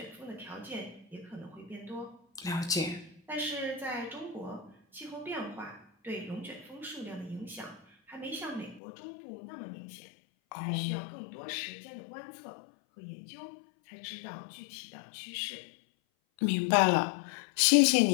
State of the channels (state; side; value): drops out; right; at 8.8 s